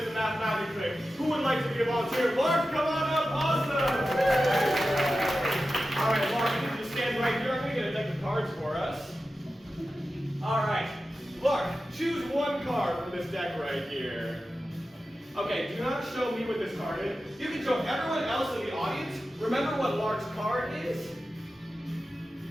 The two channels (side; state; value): both; normal; correlation 0.93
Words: the math magic trick. Who would like to be a volunteer? Mark, come on up. Awesome. All right, Mark, you can stand right here. I'm going to get a deck of cards for us. All right, Mark, choose one card from this deck right here. Okay, do not show me what this card is. You can show everyone else in the audience. Remember what Lark's card is.